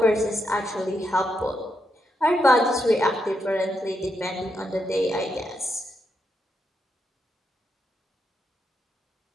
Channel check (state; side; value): normal; both; correlation 0.82